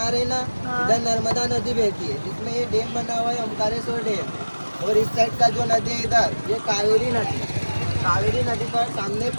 रहे हैं ना, इधर नर्मदा नदी बहती है, जिसमें ये डैम बना हुआ है ओमकारेश्वर डैम। और इस साइड का जो नदी है इधर, ये कावेरी नदी। कावेरी नदी पर सामने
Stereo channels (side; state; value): both; inverted; correlation -1.00